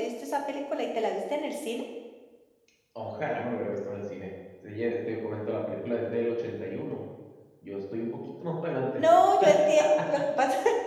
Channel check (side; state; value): both; identical; correlation 1.00